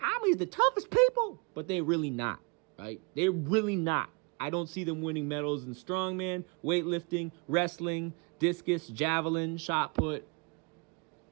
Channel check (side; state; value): left; quieter; 33.0 dB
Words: I'm the toughest people. But they're really not, right? They're really not. I don't see them winning medals in strongman, weightlifting, wrestling, discus, javelin, shot put.